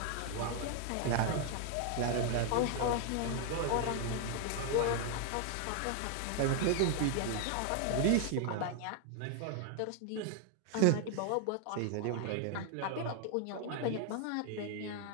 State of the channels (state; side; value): different; both; correlation 0.00